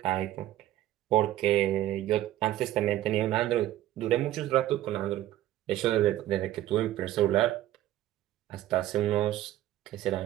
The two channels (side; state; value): left; quieter; 13.8 dB